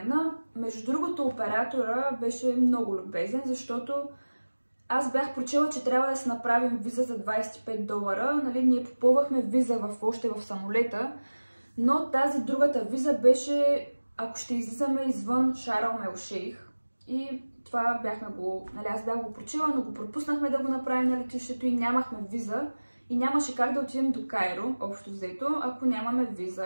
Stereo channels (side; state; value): both; inverted; correlation -1.00